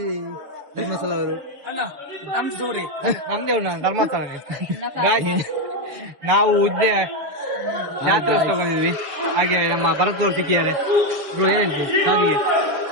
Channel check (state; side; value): late; left; 7.0 ms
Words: ಧರ್ಮಸ್ಥಳ ಅವರು ನಮ್ದೇ ಧರ್ಮಸ್ಥಳ ನಾವು ಉದ್ದೆ ಜಾತ್ರೋತ್ಸವ ಬಂದಿದ್ವಿ ಹಾಗೆ ನಮ್ಮ ಭರತವ್ರು ಸಿಕ್ಕಿದ್ದಾರೆ ಏನ್ ಹೇಳ್ತೀವಿ ಸಾವಿಗೆ